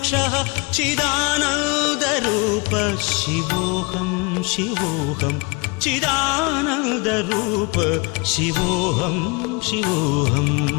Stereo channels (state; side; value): quieter; right; 28.5 dB